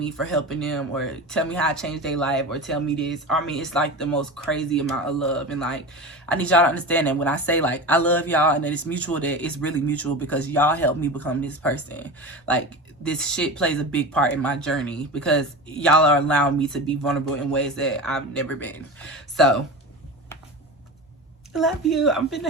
for helping them, or tell me how I changed their life, or tell me this. I mean, it's like the most crazy amount of love. And like, I need y'all to understand that when I say like I love y'all and that it's mutual, that it's really mutual, because y'all helped me become this person. Like, this shit plays a big part in my journey because y'all are allowing me to be vulnerable in ways that I've never been. So I love you. I'm finna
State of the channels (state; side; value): normal; both; correlation 0.28